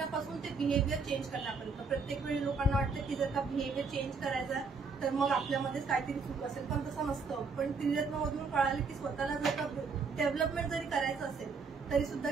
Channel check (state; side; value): quieter; left; 4.6 dB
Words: ते बिहेवियर चेंज करण्यापर्यंत. प्रत्येक वेळी लोकांना वाटतं की जर का बिहेवियर चेंज करायचा तर मग आपल्यामध्येच काहीतरी चूक असेल, पण तसं नसतं. पण त्रिरत्नमधून कळालं की स्वतःला जर का डेव्हलपमेंट जरी करायचं असेल तरी सुद्धा